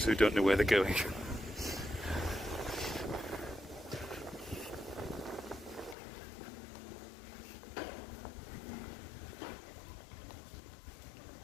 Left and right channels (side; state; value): right; drops out; at 6.0 s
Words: who don't know where they're going.